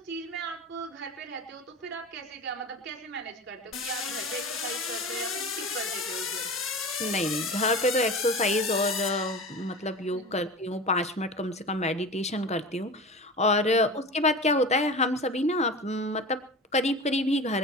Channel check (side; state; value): both; normal; correlation 0.32